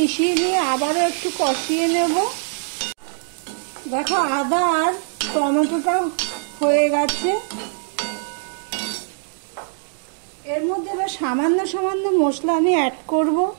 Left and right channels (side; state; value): left; silent; 64 dB below the other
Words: নিয়ে আবারও একটু কষিয়ে নেব। দেখো আদা আর টমেটোটা হয়ে গেছে। এর মধ্যে এবার সামান্য সামান্য মশলা আমি অ্যাড করব।